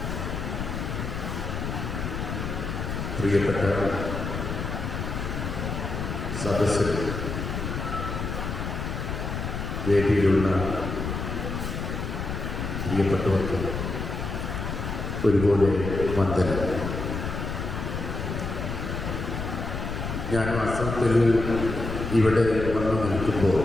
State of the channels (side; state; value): left; noise; rumble, 4 dB below the sound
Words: പ്രിയപ്പെട്ട സദസ്സിൽ വേദിയിലുള്ള പ്രിയപ്പെട്ടവർക്ക് ഒരുപോലെ വന്ദനം. ഞാൻ വാസ്തവത്തിൽ ഇവിടെ വന്നു നിൽക്കുമ്പോൾ